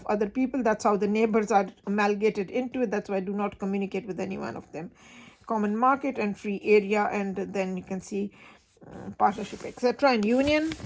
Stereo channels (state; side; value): identical; both; correlation 1.00